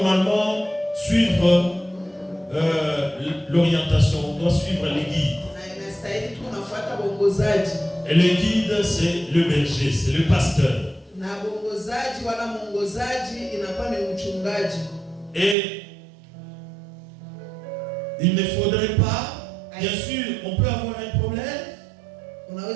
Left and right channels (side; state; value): left; drops out; at 15.6 s